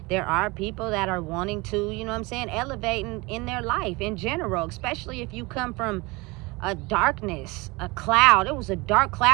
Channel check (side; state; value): left; quieter; 24.5 dB